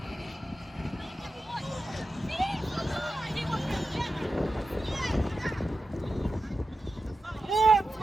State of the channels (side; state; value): both; normal; correlation 0.92